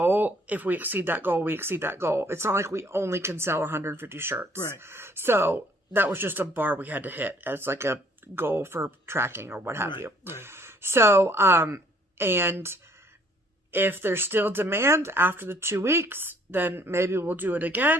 If we exceed that goal, we exceed that goal. It's not like we only can sell 150 shirts. Right. So that was just a bar we had to hit as like a goal for tracking or what have you. Right. So, and if there's still demand after the 2 weeks, then maybe we'll do it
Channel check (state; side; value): normal; both; correlation 0.61